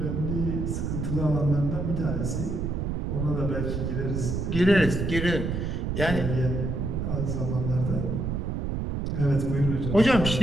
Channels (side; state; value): right; noise; rumble, 1 dB below the sound